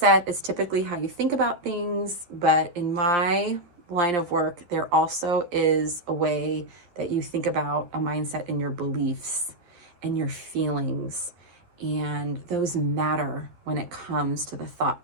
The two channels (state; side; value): late; left; 12 ms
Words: is typically how you think about things, but in my line of work, there also is a way that you think about a mindset in your beliefs and your feelings. And those matter when it comes to the